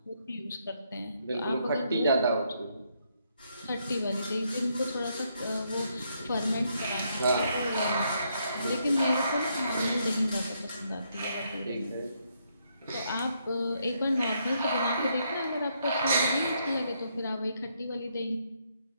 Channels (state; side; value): inverted; both; correlation -0.75